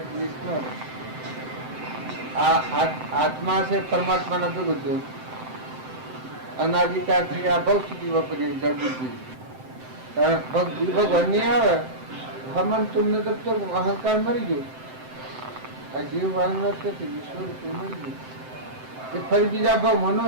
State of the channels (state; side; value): late; left; 7.8 ms